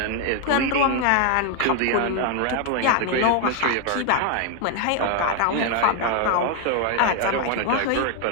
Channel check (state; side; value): different; both; correlation 0.01